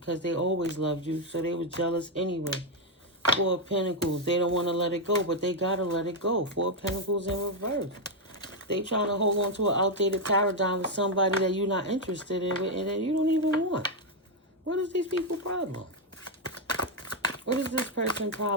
they always loved you. So they were jealous anyway. Four of Pentacles. They don't want to let it go, but they got to let it go. Four of Pentacles in reverse. They trying to hold on to an outdated paradigm with somebody that you're not interested in and that you don't even want. What is these people's problem? What is this person's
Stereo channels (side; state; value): both; normal; correlation 0.02